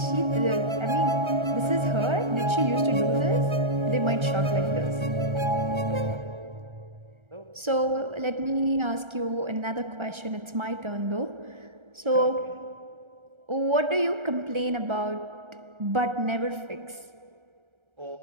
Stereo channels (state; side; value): late; left; 1.3 ms